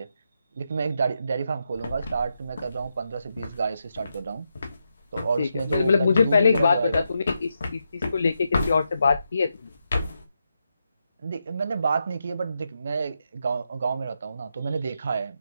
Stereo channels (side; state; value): both; inverted; correlation -0.84